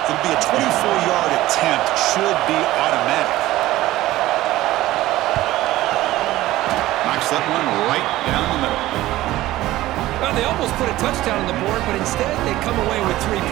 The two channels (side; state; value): left; quieter; 16.3 dB